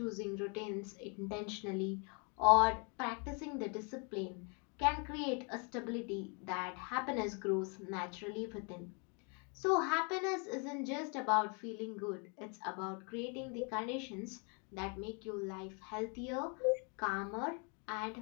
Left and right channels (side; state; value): right; quieter; 35.7 dB